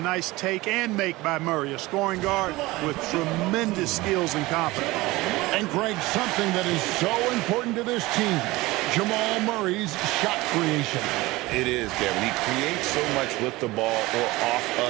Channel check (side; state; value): left; quieter; 20.2 dB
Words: take and make by Murray, a scoring guard with tremendous skills and confidence. And Greg, something that is so important to this team, Jamal Murray's shot creation. It is, Kevin. He creates so much with the ball or off